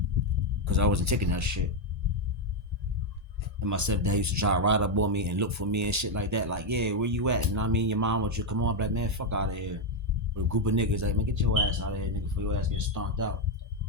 because I wasn't taking that shit. And my stepdad used to try to ride up on me and look for me and shit like that. Like, yeah, where you at? And I mean, your mom wants you to come on. I'm like, man, fuck out of here. With a group of niggas, like, man, get your ass out of here, nigga, before your ass gets stomped out.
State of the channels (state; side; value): late; left; 1.8 ms